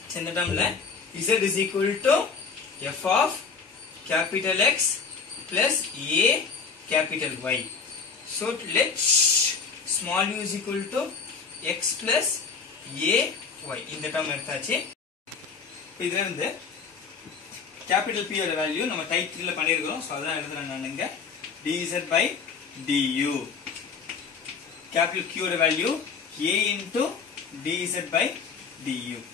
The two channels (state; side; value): quieter; right; 5.6 dB